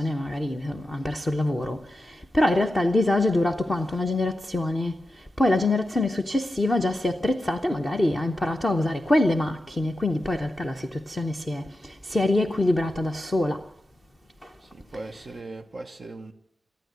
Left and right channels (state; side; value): normal; both; correlation 0.90